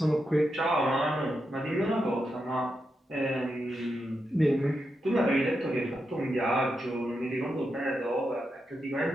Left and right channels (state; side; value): normal; both; correlation 0.86